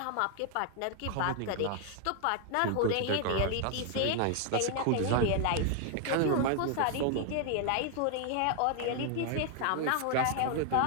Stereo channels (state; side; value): different; both; correlation 0.00